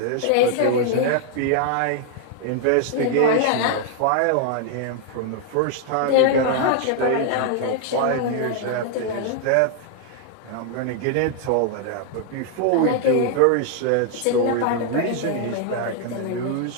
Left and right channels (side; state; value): both; different; correlation 0.00